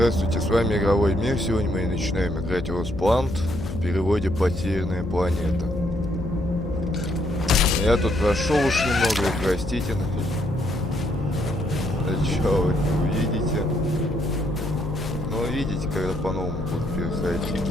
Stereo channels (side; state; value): left; noise; hum, 8 dB below the sound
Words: с вами Игровой Мир. Сегодня мы начинаем играть LostPlanet, в переводе «Потерянная планета». Я тут прошел уж немного, простите. Чё вы не увидите? Но увидите, когда по-новому буду переходить.